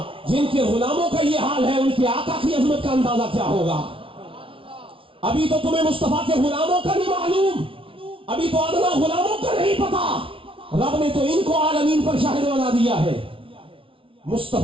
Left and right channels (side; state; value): left; late; 0.25 ms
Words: جن کے غلاموں کا یہ حال ہے، ان کے آقا کی عظمت کا اندازہ کیا ہوگا؟ ابھی تو تمہیں مصطفیٰ کے غلاموں کا نہیں معلوم، ابھی تو ادنا غلاموں کا نہیں پتا. رب نے تو ان کو عالمین پر شاہد بنا دیا ہے.